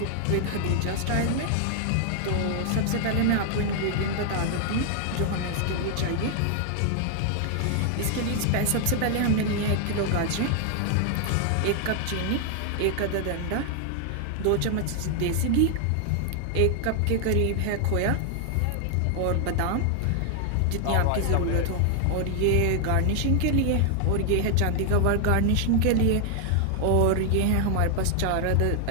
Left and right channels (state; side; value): different; both; correlation 0.00